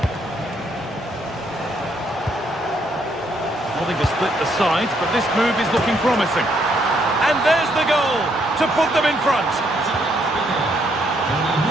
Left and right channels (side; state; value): both; normal; correlation 0.72